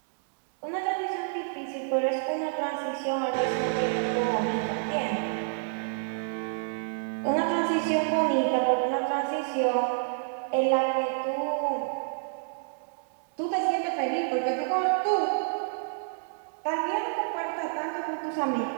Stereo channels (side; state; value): left; silent; digital silence